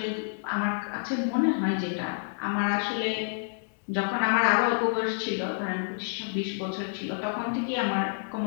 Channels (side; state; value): right; silent; 59 dB below the other